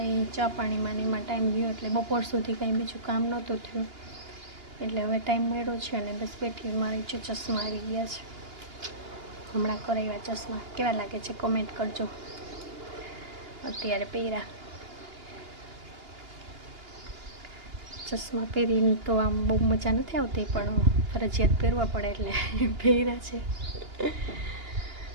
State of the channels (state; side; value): late; left; 2.8 ms